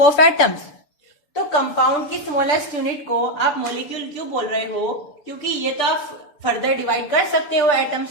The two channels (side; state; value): right; late; 6.9 ms